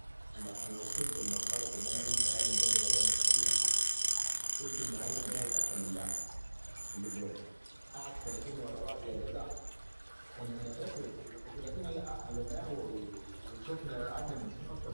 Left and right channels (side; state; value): both; inverted; correlation -1.00